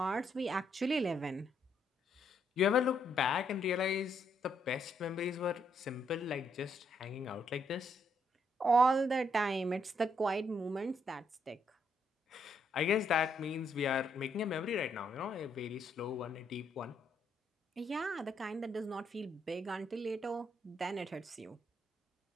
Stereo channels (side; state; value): both; normal; correlation 0.74